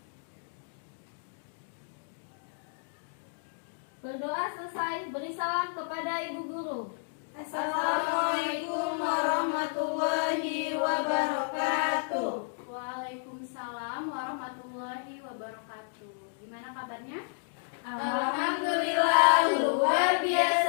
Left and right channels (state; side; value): silent; right; digital silence